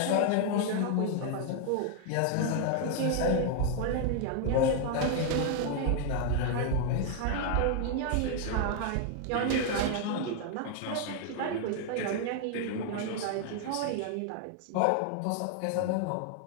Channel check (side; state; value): both; different; correlation 0.00